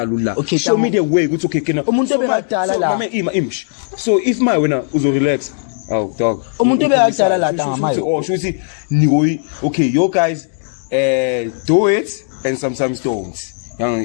show me the way ukuthi okay kena umuntu obekadala la mama image so if my wena uzo relax oh dog umuntu obekadala la tanga mayo oh shuthi nikoyi okay you guys do it and sometimes don't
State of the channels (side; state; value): right; silent; digital silence